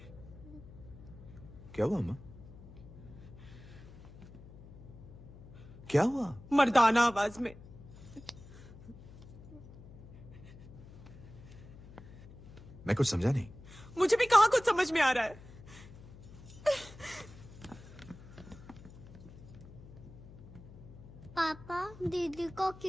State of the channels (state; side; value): noise; left; hum, 17 dB below the sound